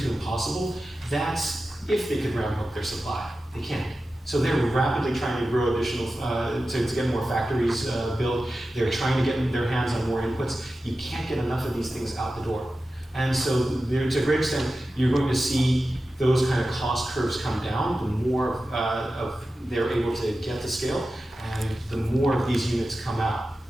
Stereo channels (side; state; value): both; normal; correlation 0.93